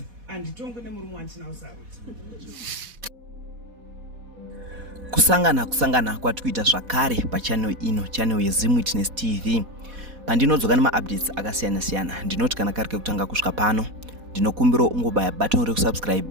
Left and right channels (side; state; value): left; late; 4.1 ms